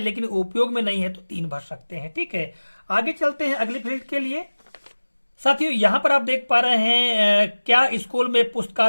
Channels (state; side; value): inverted; both; correlation -1.00